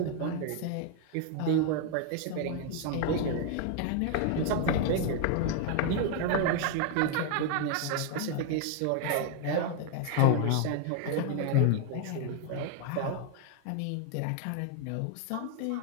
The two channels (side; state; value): both; different; correlation 0.00